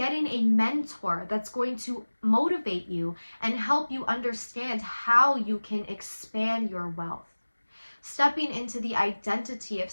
a mentor that's going to motivate you and help you understand how you can expand your wealth. Stepping into the identity of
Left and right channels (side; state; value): both; inverted; correlation -1.00